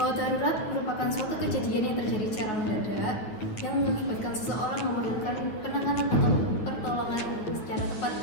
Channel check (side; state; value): right; late; 9.6 ms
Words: darurat merupakan suatu kejadian yang terjadi secara mendadak yang mengakibatkan seseorang memerlukan penanganan atau pertolongan secara tepat